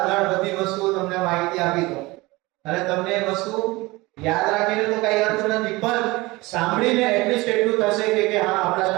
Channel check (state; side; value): quieter; left; 21.8 dB